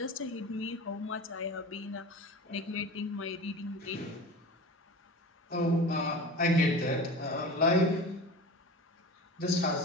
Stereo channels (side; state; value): both; normal; correlation 0.34